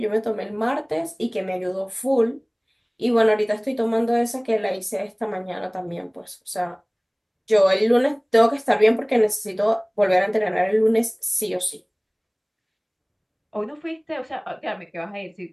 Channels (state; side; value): identical; both; correlation 1.00